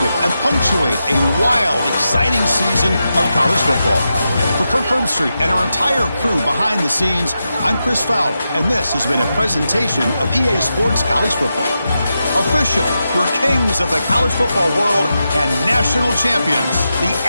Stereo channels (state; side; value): inverted; both; correlation -0.88